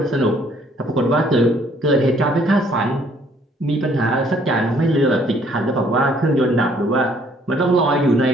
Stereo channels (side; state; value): both; normal; correlation 0.63